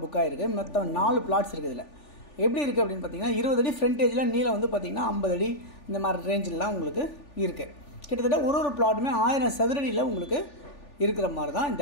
புக் ஆகிருக்கு. மொத்தம் 4 பிளாட்ஸ் இருக்குது. இதில் எப்படி இருக்குது அப்படின்னு பார்த்தீங்கன்னா, 20 அடி ஃப்ரண்டேஜில், நீளம் வந்து பார்த்திங்கன்னா 50 அடி இந்த மாதிரி ரேஞ்சிலலாம் உங்களுக்கு இருக்குது. கிட்டத்தட்ட ஒரு பிளாட்டுமே 1000 சதுரடியில் உங்களுக்கு இருக்கிற மாதிரி தான்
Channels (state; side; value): late; right; 3.4 ms